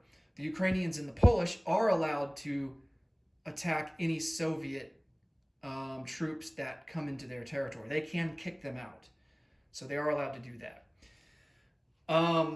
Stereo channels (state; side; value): identical; both; correlation 1.00